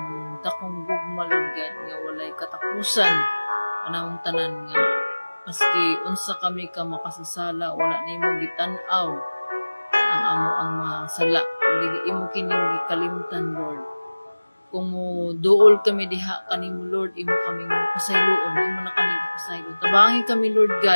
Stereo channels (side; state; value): both; inverted; correlation -1.00